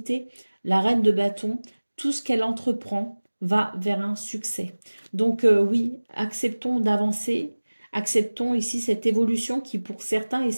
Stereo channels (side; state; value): both; inverted; correlation -1.00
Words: La reine de bâton, tout ce qu'elle entreprend va vers un succès. Donc oui, acceptons d'avancer, acceptons ici cette évolution qui pour certains et